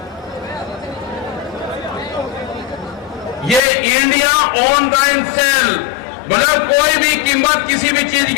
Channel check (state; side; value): drops out; right; at 3.6 s